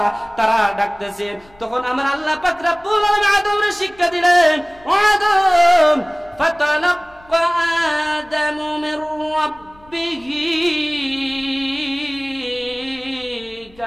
তারা ডাকতেছে। তখন আমার আল্লাহ পাক রব্বুল আলামিন আদমরে শিক্ষা দিলেন, ও আদম ফাতালাক্কা আদামু মির রাব্বিহি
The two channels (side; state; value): left; noise; rumble, 28 dB below the sound